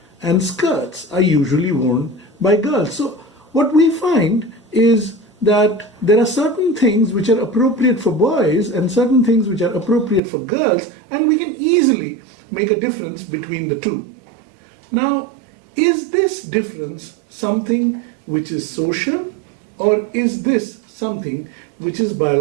and skirts are usually worn by girls. So what we find is that there are certain things which are appropriate for boys and certain things which are appropriate for girls, and we can easily make a difference between the two. Now, is this difference something which is social, or is this something which is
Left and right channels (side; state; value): left; drops out; at 10.2 s